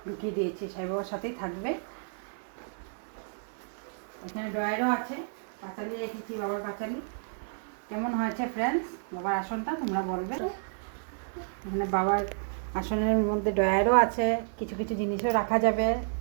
ঢুকিয়ে দিয়েছি। সাই বাবার সাথেই থাকবে। এখানে ড্রয়ারও আছে, পাঁচালি রেখেছি, বাবার পাঁচালি। কেমন হয়েছে ফ্রেন্ডস বাবার আসনটা তোমরা বলবে। এখানে বাবার আসনের মধ্যে ড্রয়ারও আছে, কিছু কিছু জিনিসও রাখা যাবে।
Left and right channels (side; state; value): left; silent; digital silence